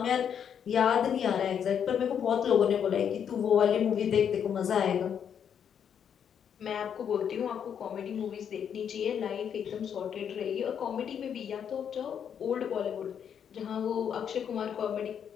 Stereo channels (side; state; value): right; quieter; 8.2 dB